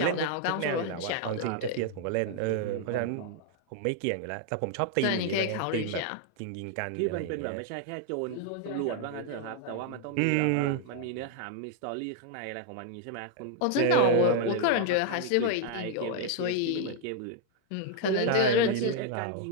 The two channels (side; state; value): both; different; correlation 0.00